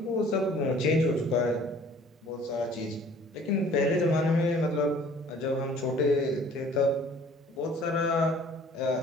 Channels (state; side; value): normal; both; correlation 0.53